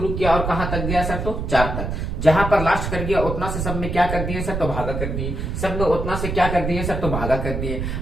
किया और कहां तक गया सर? तो 4 तक। जहां पर लास्ट कर गया उतना से सब में क्या कर दिए सर? तो भागा कर दिए। सब में उतना से क्या कर दिए सर? तो भागा कर दिए।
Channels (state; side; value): noise; right; rumble, 3 dB below the sound